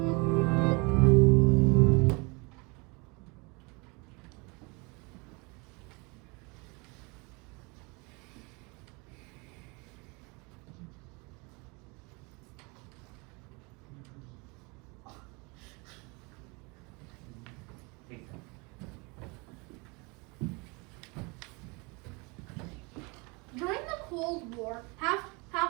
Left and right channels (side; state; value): left; quieter; 28.8 dB